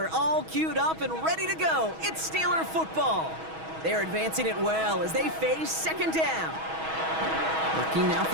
all queued up and ready to go. It's Steeler football. They're advancing it well as they face second down. Looking now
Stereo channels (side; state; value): left; late; 6.2 ms